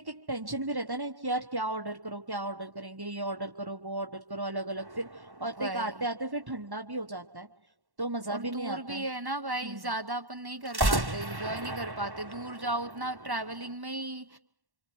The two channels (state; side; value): late; left; 1.1 ms